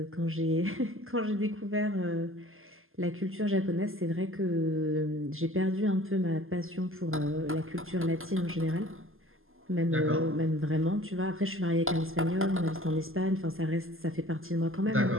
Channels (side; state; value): left; late; 0.60 ms